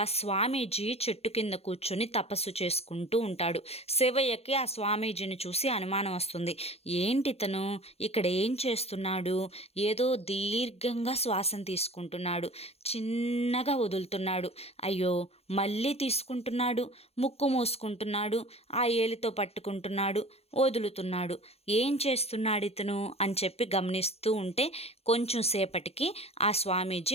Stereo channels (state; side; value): late; right; 0.29 ms